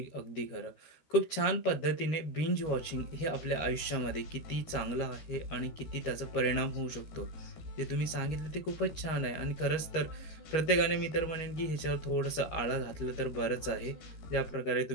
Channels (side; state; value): right; late; 13 ms